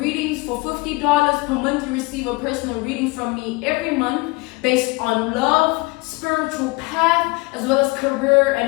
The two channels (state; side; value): quieter; right; 24.5 dB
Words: for $50 per month. You receive a personal reading from me every month based on love, spiritual path, as well as career